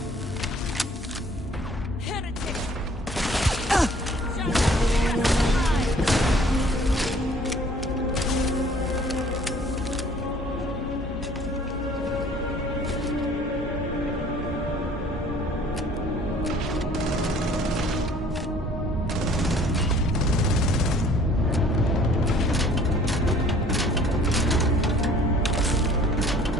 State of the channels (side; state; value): both; normal; correlation 0.54